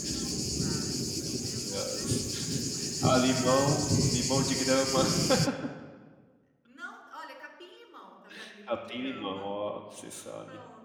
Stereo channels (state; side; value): identical; both; correlation 1.00